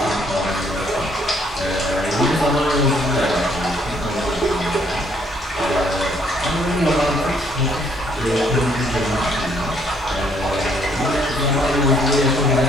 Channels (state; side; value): normal; both; correlation 0.67